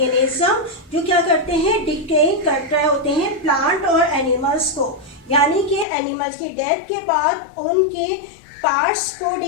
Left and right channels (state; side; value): drops out; right; at 5.9 s